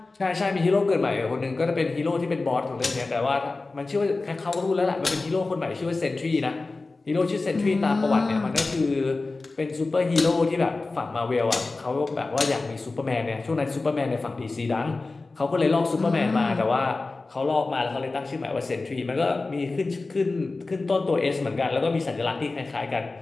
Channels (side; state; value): right; quieter; 3.5 dB